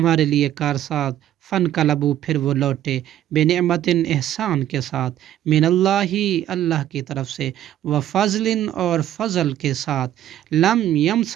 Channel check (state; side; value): quieter; left; 12.1 dB